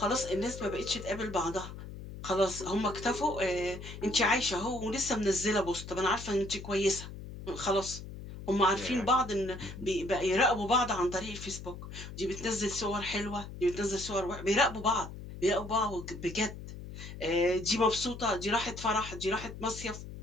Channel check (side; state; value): left; noise; hum, 11 dB below the sound